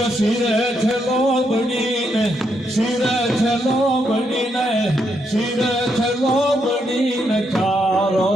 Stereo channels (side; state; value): both; normal; correlation 0.78